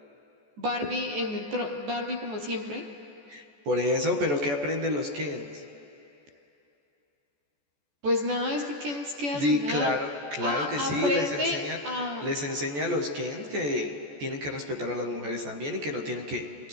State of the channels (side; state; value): left; late; 14 ms